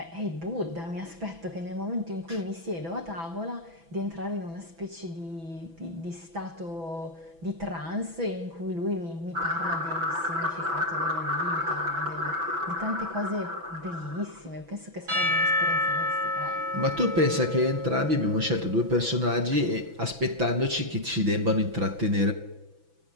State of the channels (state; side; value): late; left; 6.0 ms